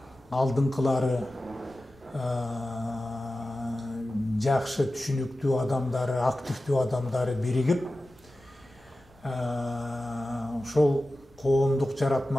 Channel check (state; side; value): noise; left; rumble, 28 dB below the sound